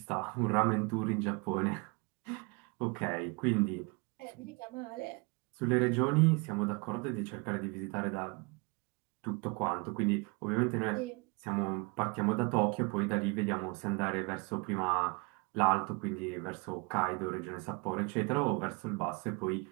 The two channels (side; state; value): left; quieter; 30.0 dB